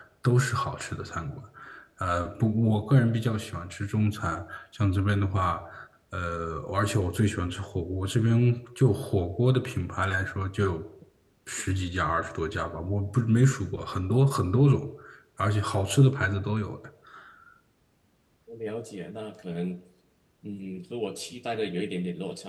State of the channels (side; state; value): both; identical; correlation 1.00